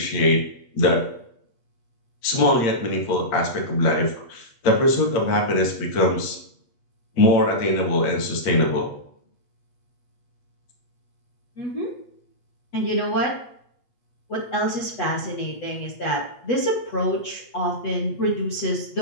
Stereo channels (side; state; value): right; late; 8.3 ms